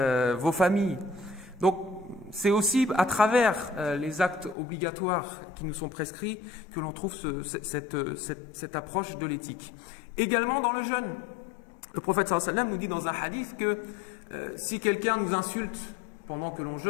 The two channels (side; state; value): right; drops out; at 4.5 s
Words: Vos familles. Donc, c'est aussi à travers les actes obligatoires qui nous sont prescrits que l'on trouve cette approche de l'éthique. Également dans le jeûne. Le prophète sallallahu alayhi wa sallam nous dit dans un hadith que si quelqu'un nous insulte pendant que l'on